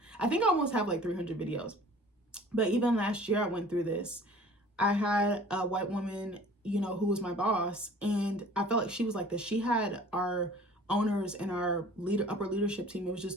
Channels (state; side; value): normal; both; correlation 0.48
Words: I think I almost have like 300 videos. But even last year I went through this. I had a white woman, who was my boss, and I felt like she was like this. She had our owners and our upper leadership team, it was